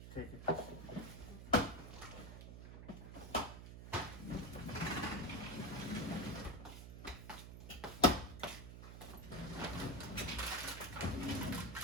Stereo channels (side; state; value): right; noise; hum, 10 dB below the sound